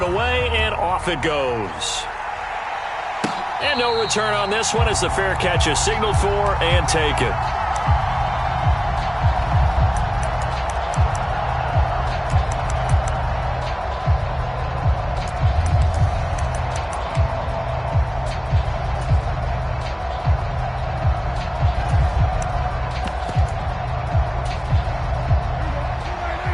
away, and off it goes. And no return on this one as the fair catch is signaled for and taken.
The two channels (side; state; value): both; identical; correlation 1.00